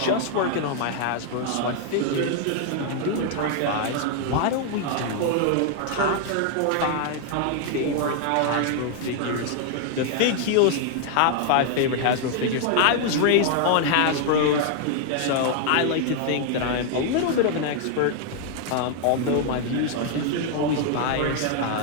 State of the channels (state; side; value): different; both; correlation 0.00